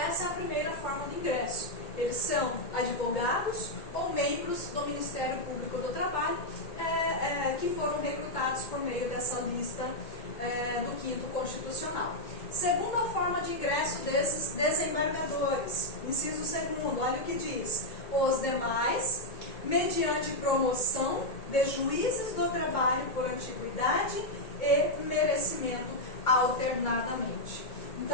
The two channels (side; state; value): right; late; 2.2 ms